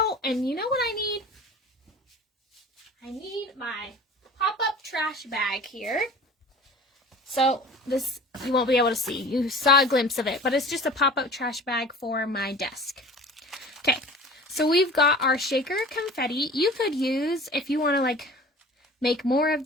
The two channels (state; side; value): normal; both; correlation 0.41